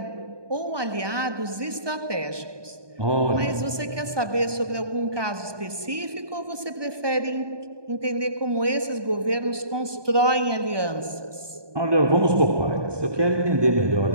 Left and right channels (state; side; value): late; left; 1.2 ms